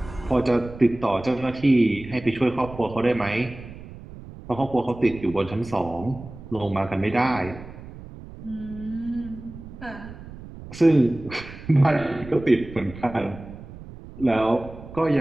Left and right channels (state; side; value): noise; right; rumble, 15 dB below the sound